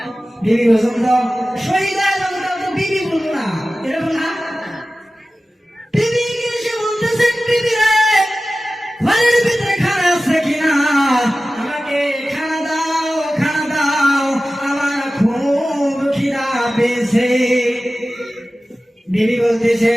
শহীদ বিবি বলবো না, এরকম না। বিবি এসে বলতেছেন, বিবি রে, ঘরের ভিতরে খানা আছে কিনা, আমাকে খানা দাও, আমার খুব খিদা পেয়েছে। বিবি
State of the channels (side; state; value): both; normal; correlation 0.96